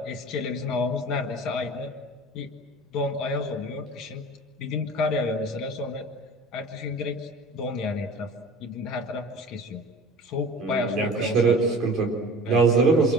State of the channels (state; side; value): normal; both; correlation 0.41